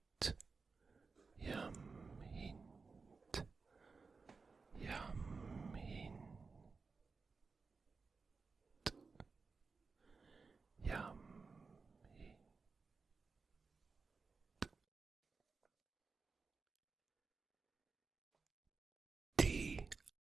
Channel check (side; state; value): left; quieter; 4.5 dB